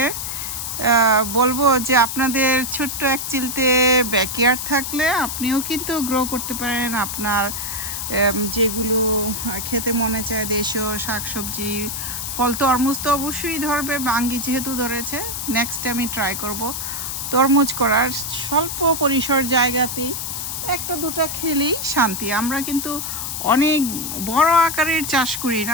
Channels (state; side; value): noise; left; hiss, 4 dB below the sound